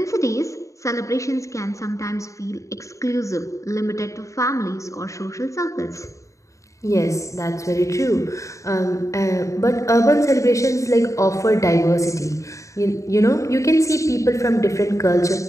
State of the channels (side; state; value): right; late; 0.15 ms